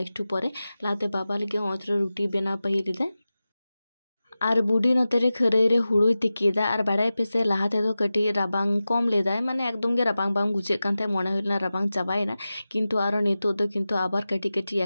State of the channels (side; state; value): both; inverted; correlation -0.95